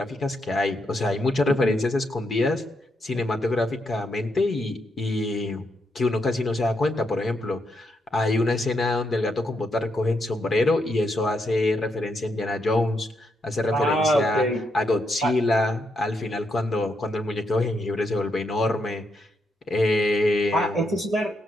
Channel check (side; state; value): both; normal; correlation 0.80